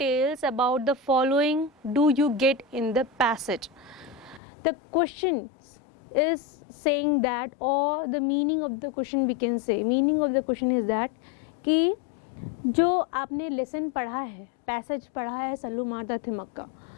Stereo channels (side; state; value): right; drops out; at 4.4 s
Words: about the following do you get in the passage? The question is saying that, or the meaning of the question we can say, meaning of the question is that कि जो आपने lesson पढ़ा है, passage पढ़ा है सल्लू मारदा थिमक्का,